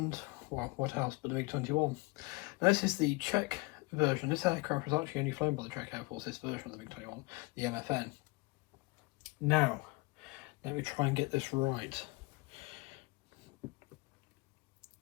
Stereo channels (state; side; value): quieter; right; 25.2 dB